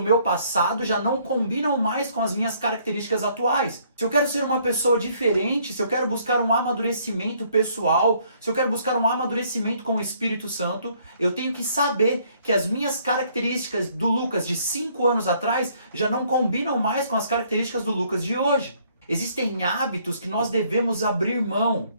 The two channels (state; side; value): inverted; both; correlation -0.65